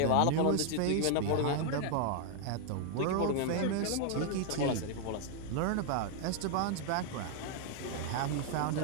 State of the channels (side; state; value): both; different; correlation 0.00